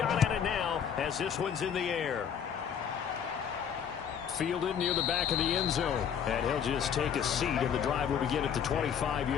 at it now as this one's in the air. Fielded near the back of the end zone. And he'll just take a seat, and the drive will begin at the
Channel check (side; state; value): right; quieter; 8.1 dB